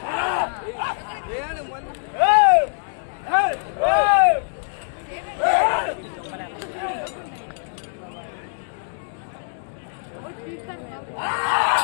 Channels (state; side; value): silent; right; digital silence